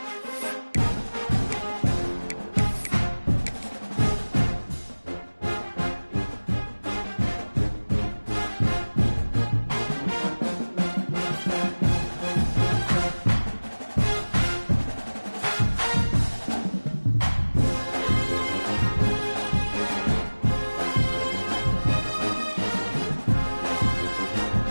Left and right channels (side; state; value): both; inverted; correlation -1.00